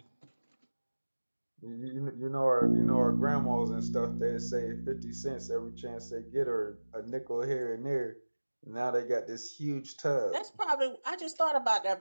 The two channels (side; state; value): both; inverted; correlation -1.00